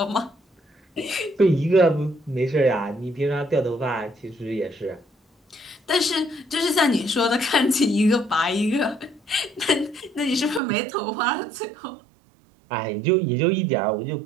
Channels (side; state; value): left; drops out; at 10.6 s